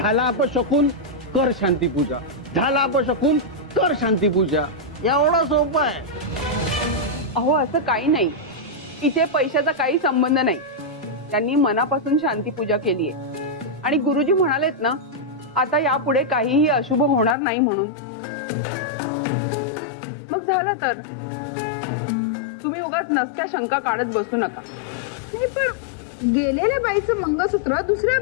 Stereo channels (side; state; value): right; drops out; at 17.4 s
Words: अपशकुन कर शांती पूजा, झाला अपशकुन कर शांती पूजा, एवढं सोपं आहे। अहो असं काही नाही, इथे पैशाचा काही संबंध नाही। त्यांनी मनापासून शांती पूजा केली आहे आणि गुरुजी म्हणालेत ना आता यापुढे काहीही अशुभ होणार नाही म्हणून। मग झालं तर तुम्ही उगाच नसत्या शंका काढत बसू नका। नाही पण गेलेल्या बाईचं मंगळसूत्र दुसऱ्या